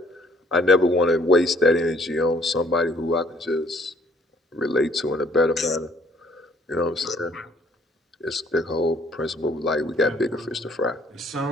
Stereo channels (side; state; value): both; normal; correlation 0.61